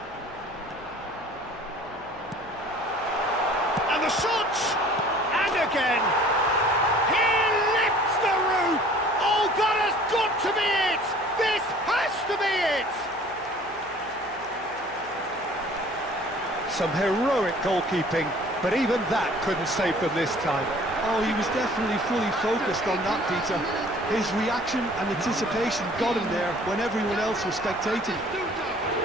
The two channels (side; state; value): left; noise; hum, 23 dB below the sound